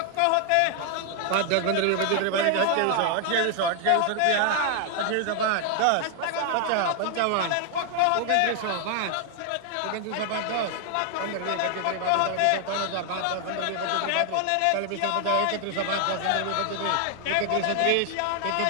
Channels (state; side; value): different; both; correlation 0.00